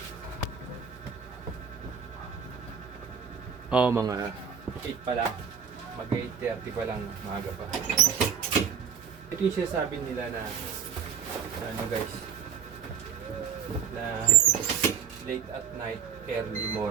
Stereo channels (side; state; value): left; quieter; 7.3 dB